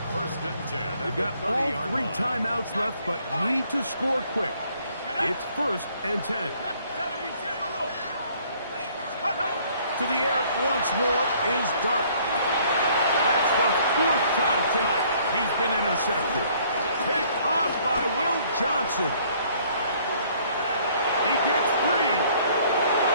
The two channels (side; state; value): both; inverted; correlation -0.61